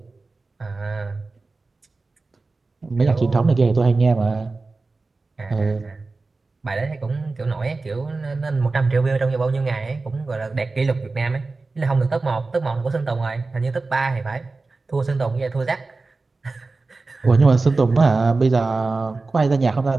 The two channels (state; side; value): quieter; left; 3.7 dB